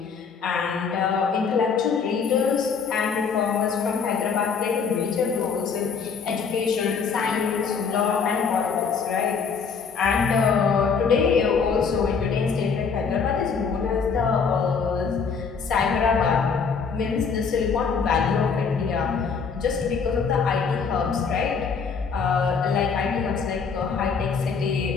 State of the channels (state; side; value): quieter; right; 5.7 dB